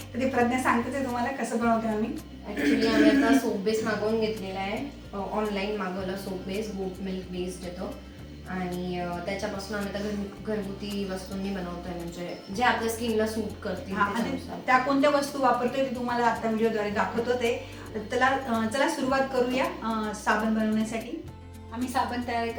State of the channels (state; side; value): identical; both; correlation 1.00